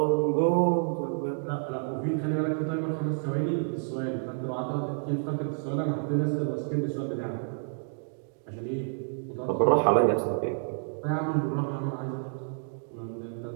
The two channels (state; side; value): silent; left; digital silence